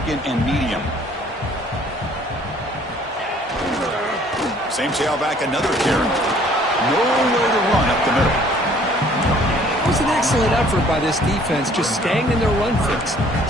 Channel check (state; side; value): normal; both; correlation 0.57